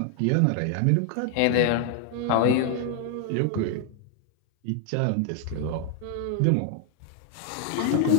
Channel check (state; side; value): different; both; correlation 0.00